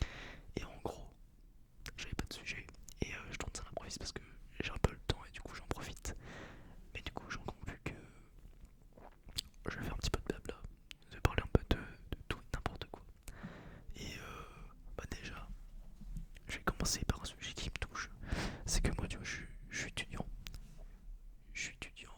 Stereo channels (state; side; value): identical; both; correlation 1.00